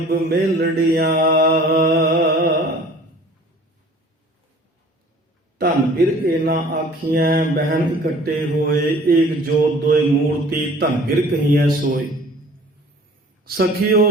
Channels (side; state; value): both; normal; correlation 0.49